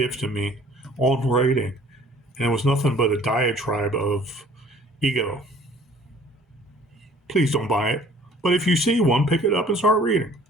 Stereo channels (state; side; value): normal; both; correlation 0.53